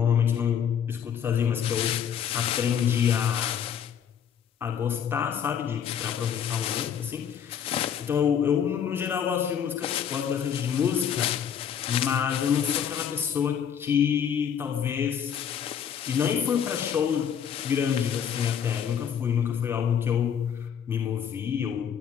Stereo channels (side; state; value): right; quieter; 8.3 dB